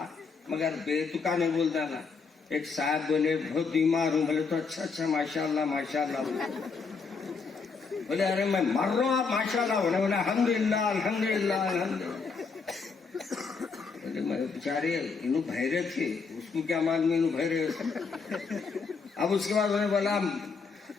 مگر بے تکا نہیں بولتا نا. ایک صاحب بولے بہت بیمار ہوں، بولے تو اچھا ماشاءاللہ ماشاءاللہ. بولے ارے میں مر رہا ہوں، آپ ماشاءاللہ بولے. بولے الحمدللہ الحمدللہ الحمدللہ. بولے میں بیچارے انہوں بھیرے تھے، اس तू क्या मालूम इन भरे। अब उसके बाद मैंने बोला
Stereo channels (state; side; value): quieter; right; 5.0 dB